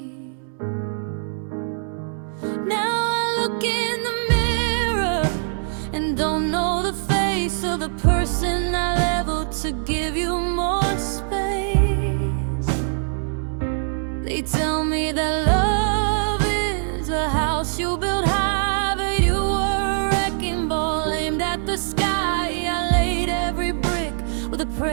Now I look in the mirror and don't know the face of the person I leveled to give you more space. They tell me that love is a house you build high, but you were a wrecking ball aimed at the sky. I laid every brick with a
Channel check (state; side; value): silent; left; 64 dB below the other